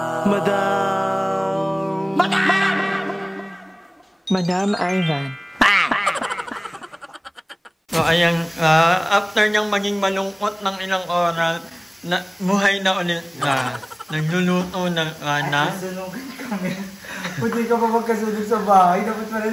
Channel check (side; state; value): both; identical; correlation 1.00